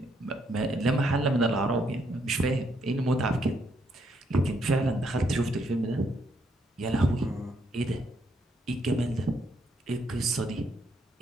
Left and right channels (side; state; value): both; normal; correlation 0.74